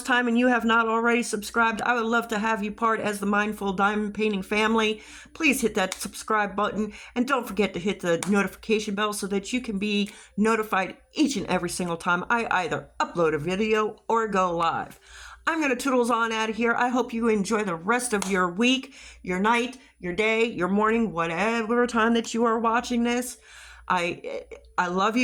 time and you have not already subscribed, I would love to have you part as the Mindful Diamond Painting family. Please hit that subscribe button and don't forget to hit the notification bell so that you can be notified each and every single time I either upload a video or go live. I'm going to toodles on out of here. I hope you enjoy the rest of your week, your night, your day, your morning, whatever time that you are watching this. I love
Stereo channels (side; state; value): both; identical; correlation 1.00